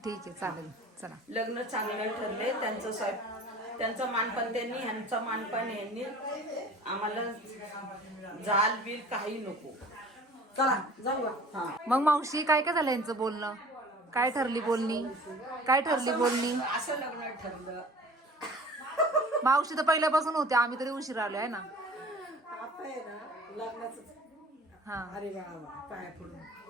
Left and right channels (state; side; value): normal; both; correlation 0.45